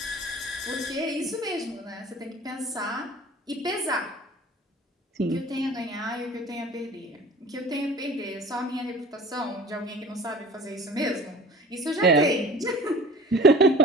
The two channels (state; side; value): normal; both; correlation 0.42